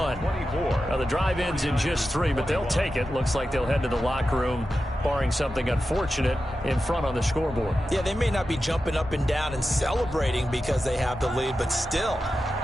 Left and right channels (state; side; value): normal; both; correlation 0.92